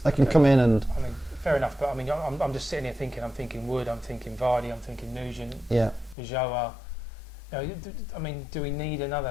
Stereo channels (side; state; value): right; drops out; at 6.2 s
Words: can come in and. I mean, fair enough, but I mean, I'm just sitting here thinking. I'm thinking Wood. I'm thinking Vardy. I'm thinking Nugent. Joa. I mean, do we need